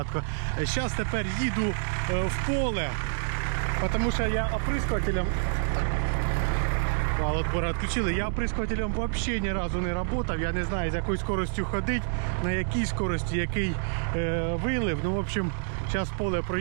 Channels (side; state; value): left; silent; digital silence